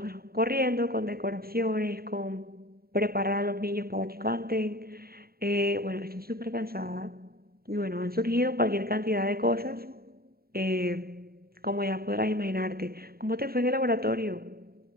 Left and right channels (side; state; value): left; late; 0.44 ms